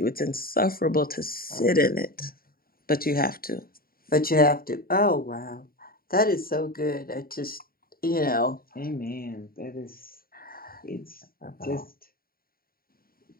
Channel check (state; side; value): late; right; 0.43 ms